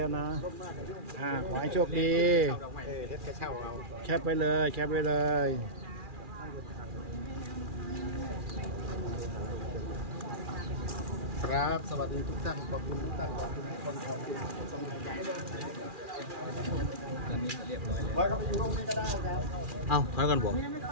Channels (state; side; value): late; left; 2.4 ms